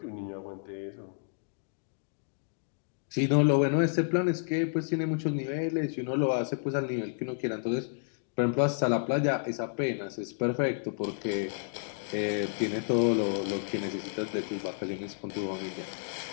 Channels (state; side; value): silent; right; digital silence